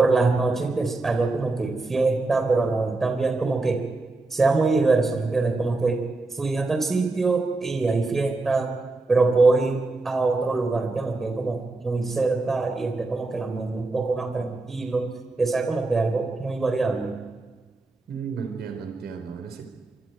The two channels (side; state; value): left; quieter; 3.3 dB